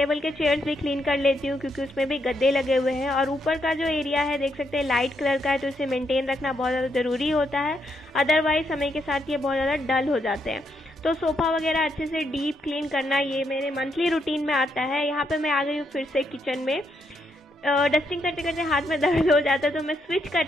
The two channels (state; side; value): normal; both; correlation 0.78